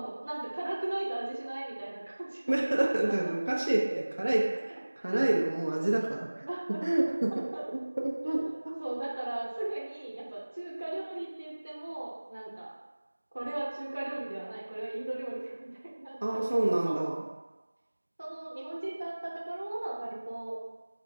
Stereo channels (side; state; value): both; inverted; correlation -1.00